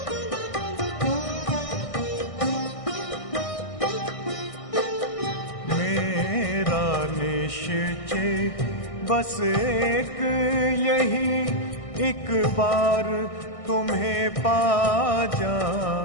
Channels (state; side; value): late; right; 1.6 ms